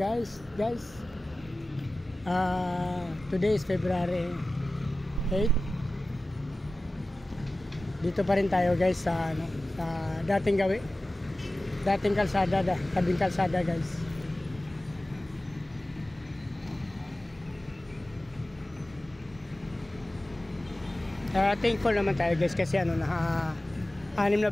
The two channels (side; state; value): both; normal; correlation 0.96